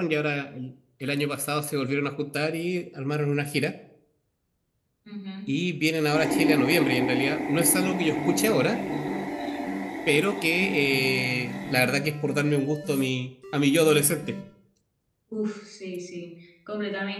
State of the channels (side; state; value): both; identical; correlation 1.00